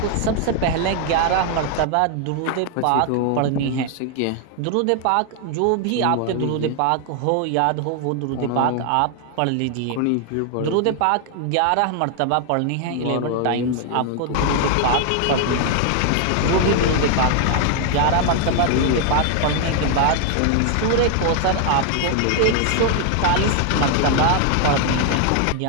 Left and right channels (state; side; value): different; both; correlation 0.00